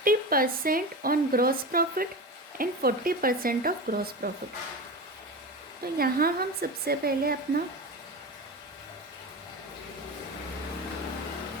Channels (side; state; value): both; normal; correlation 0.26